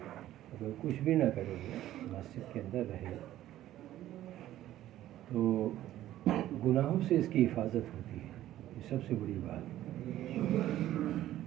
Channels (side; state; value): left; quieter; 13.5 dB